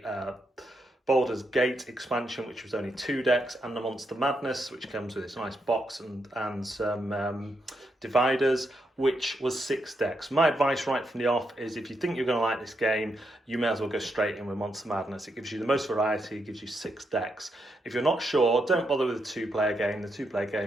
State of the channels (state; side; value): normal; both; correlation 0.81